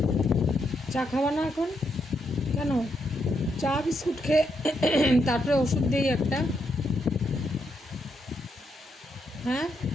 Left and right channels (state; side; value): normal; both; correlation 0.79